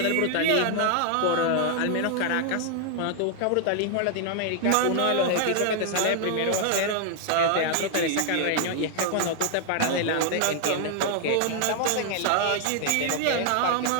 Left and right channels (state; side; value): different; both; correlation 0.00